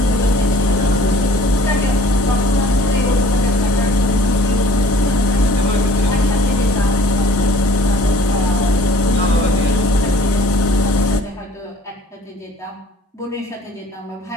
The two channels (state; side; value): normal; both; correlation 0.53